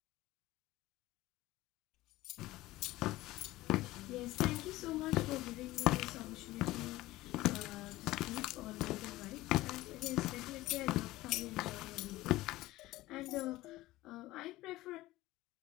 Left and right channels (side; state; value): right; quieter; 17.7 dB